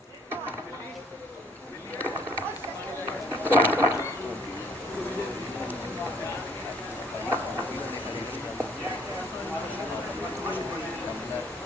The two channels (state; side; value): normal; both; correlation 0.61